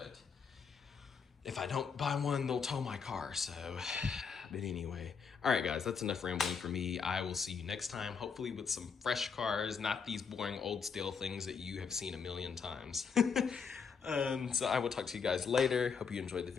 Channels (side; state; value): right; quieter; 6.0 dB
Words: if I don't buy one, they'll tow my car, so. But anyway, all right guys, that's enough rambling for me. I will see you next time, hopefully with some fresh cars, not these boring old stale things that you have seen a million times. So I will talk to you guys later. Hope you enjoyed the